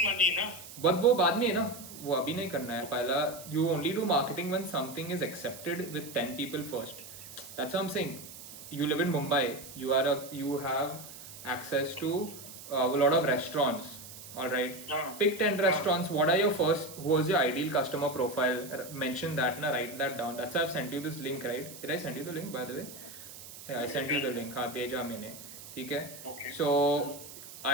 money ना. बट वो बाद में है ना, वो अभी नहीं करना है. पहला you only do marketing when something is accepted with 10 people first. That's what I'm saying. You live in Mumbai, you have access to a lot of restaurants. All right, pick 10 restaurants. What are your who was your ideal customer profile? Mention that, write that down. That's why I've sent you this link, right? Did I send you the link, by the way? Yeah, I sent you the link. हाँ, भेजा मैंने. ठीक है? So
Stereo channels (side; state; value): right; noise; hiss, 14 dB below the sound